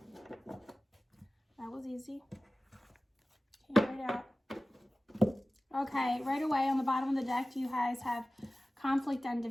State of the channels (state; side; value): normal; both; correlation 0.96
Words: was easy. Came right out. Okay, right away on the bottom of the deck, you guys have conflict and